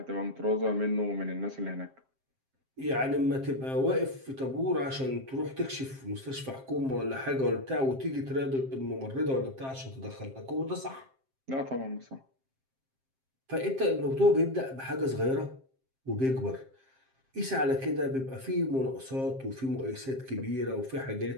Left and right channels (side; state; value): left; late; 7.6 ms